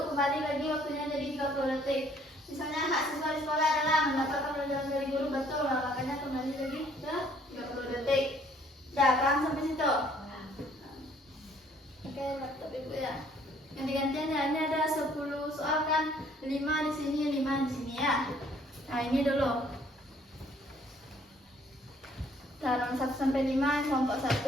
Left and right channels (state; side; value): normal; both; correlation 0.61